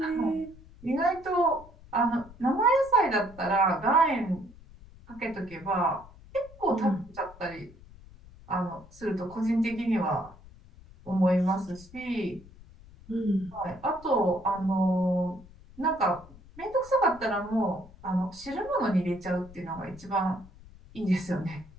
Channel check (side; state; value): left; noise; rumble, 21 dB below the sound